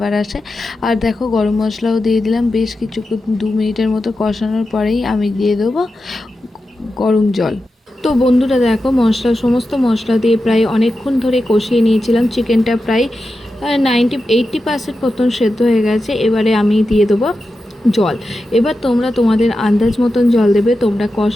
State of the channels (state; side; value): normal; both; correlation 0.91